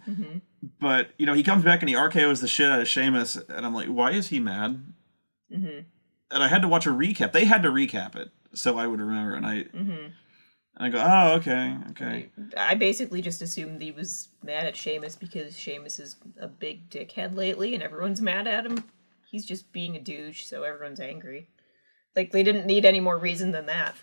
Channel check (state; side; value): inverted; both; correlation -1.00